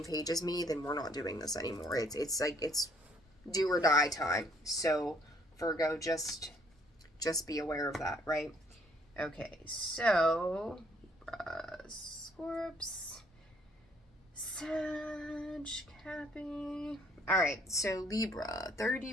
page as me, then we're not doing this anymore. It's like, it's do or die time. So Virgo, just be aware of that, right? Okay, so Scorps, Sag, Cappy. All right, so Libra,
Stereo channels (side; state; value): both; normal; correlation 0.64